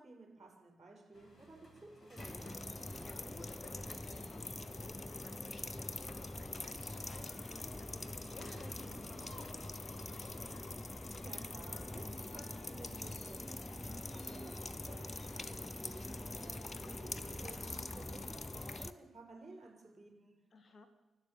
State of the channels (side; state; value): both; normal; correlation 0.91